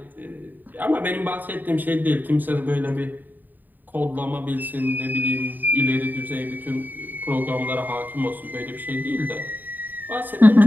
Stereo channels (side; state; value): left; late; 0.088 ms